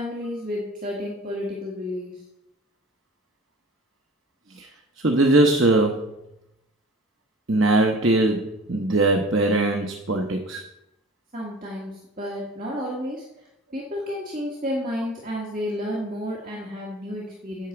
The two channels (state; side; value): normal; both; correlation 0.43